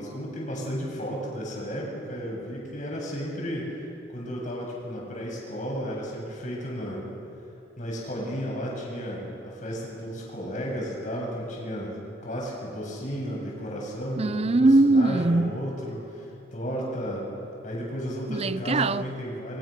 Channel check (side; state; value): both; normal; correlation 0.68